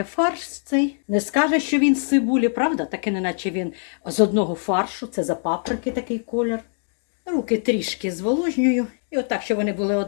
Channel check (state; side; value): silent; right; 64 dB below the other